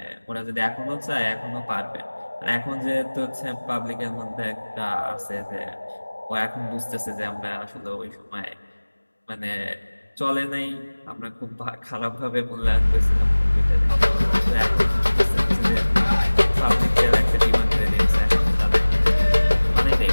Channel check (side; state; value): both; inverted; correlation -1.00